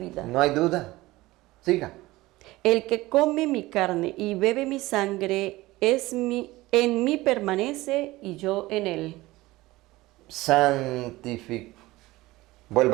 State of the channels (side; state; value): left; quieter; 19.1 dB